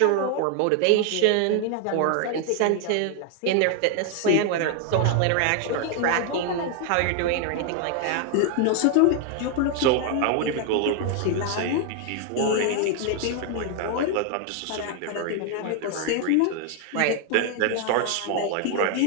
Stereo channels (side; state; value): both; different; correlation 0.00